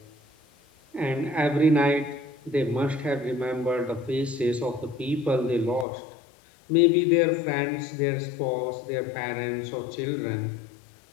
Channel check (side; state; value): right; drops out; at 5.9 s